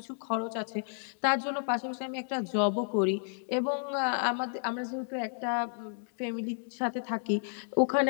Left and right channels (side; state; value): right; silent; digital silence